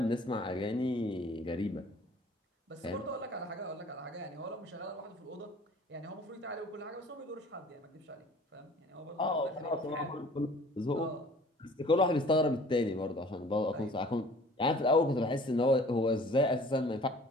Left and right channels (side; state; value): both; normal; correlation 0.50